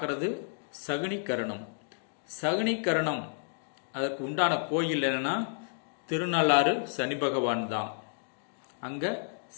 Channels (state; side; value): silent; right; digital silence